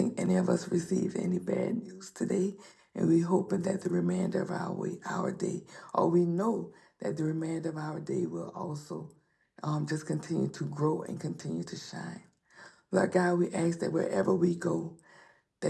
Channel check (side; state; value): both; identical; correlation 1.00